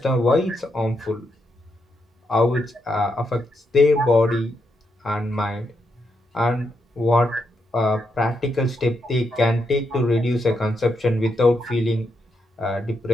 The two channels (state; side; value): normal; both; correlation 0.81